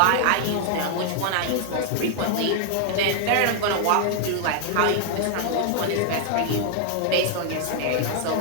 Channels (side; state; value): both; different; correlation 0.00